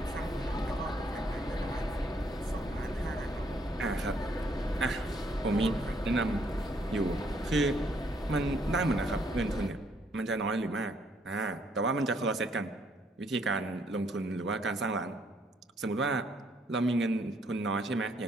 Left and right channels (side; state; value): both; normal; correlation 0.69